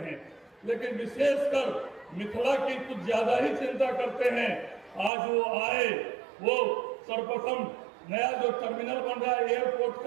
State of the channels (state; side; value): drops out; left; at 5.1 s